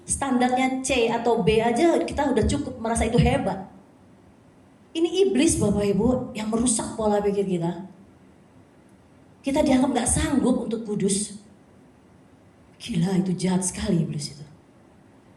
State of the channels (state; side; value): identical; both; correlation 1.00